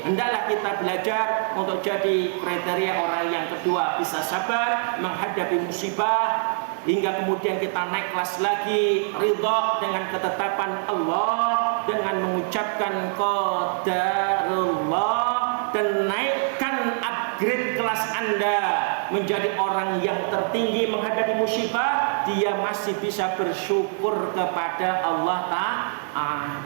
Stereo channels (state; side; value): silent; left; 59 dB below the other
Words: hendaklah kita belajar untuk jadi kriteria orang yang kedua, bisa sabar menghadapi musibah hingga kemudian kita naik kelas lagi, ridha dengan ketetapan Allah dengan mengucapkan qadarullah, dan naikkan upgrade kelas Anda menjadi orang yang tertinggi menghadapi musibah. Dia masih bisa bersyukur kepada Allah